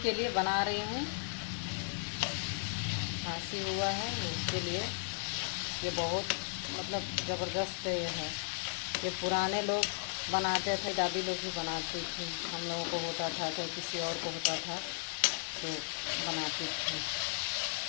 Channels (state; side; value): silent; right; digital silence